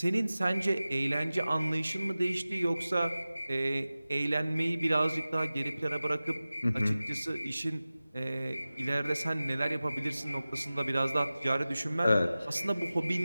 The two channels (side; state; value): both; inverted; correlation -0.97